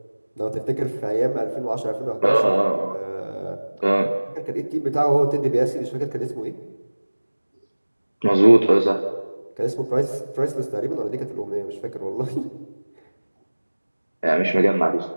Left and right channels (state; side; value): inverted; both; correlation -1.00